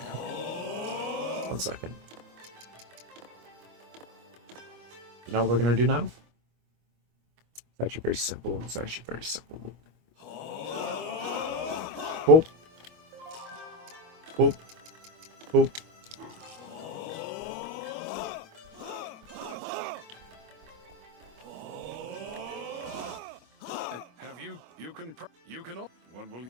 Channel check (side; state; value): left; late; 25 ms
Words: second. You know what we're gonna do now? It's actually very simple. It's actually very simple. Boop. Boop. Boop. Have you can what will